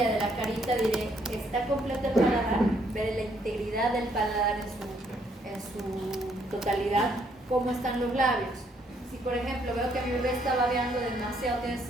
de la carita, diré, está completo el paladar, veré la integridad del paladar en su totalidad, cómo están los labios. Si por ejemplo veo que mi bebé está babeando demasiado, tiene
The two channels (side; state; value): both; normal; correlation 0.69